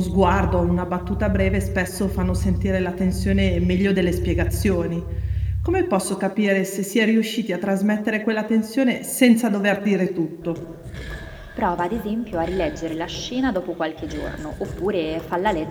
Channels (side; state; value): both; identical; correlation 1.00